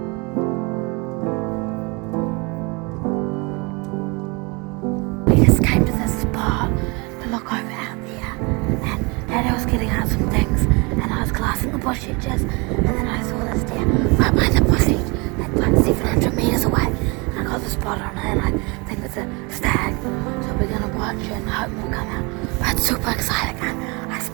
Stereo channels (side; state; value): left; quieter; 28.6 dB